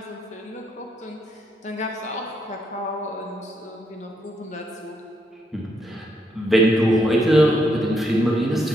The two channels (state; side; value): normal; both; correlation 0.76